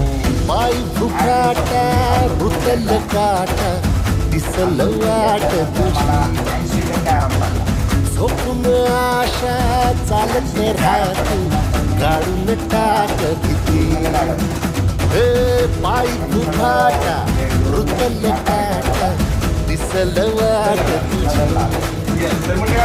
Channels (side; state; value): both; identical; correlation 1.00